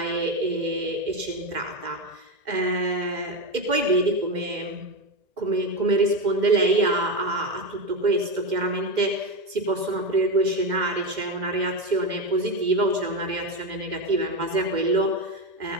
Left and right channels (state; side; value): late; left; 2.1 ms